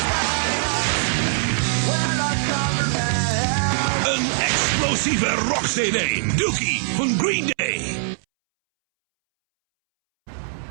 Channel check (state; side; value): silent; left; 64 dB below the other